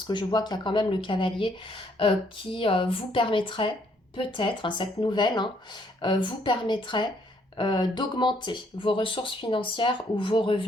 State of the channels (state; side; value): normal; both; correlation 0.68